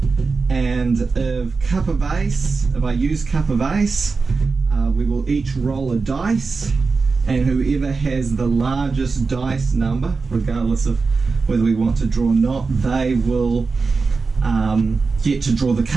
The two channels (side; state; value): left; quieter; 4.4 dB